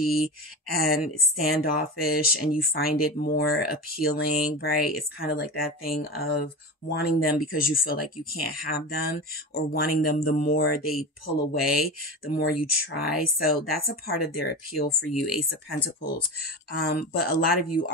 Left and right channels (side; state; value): both; normal; correlation 0.26